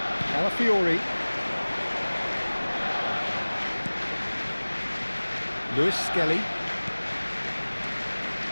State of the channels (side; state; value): both; inverted; correlation -1.00